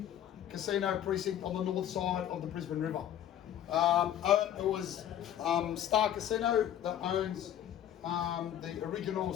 casino precinct on the north side of the Brisbane River. It was Star Casino that owns the original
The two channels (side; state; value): right; quieter; 10.9 dB